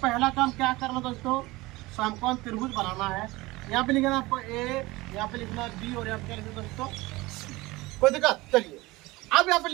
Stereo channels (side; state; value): left; quieter; 20.9 dB